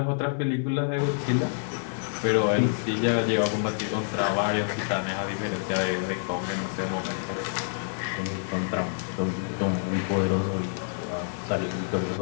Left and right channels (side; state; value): right; silent; 60 dB below the other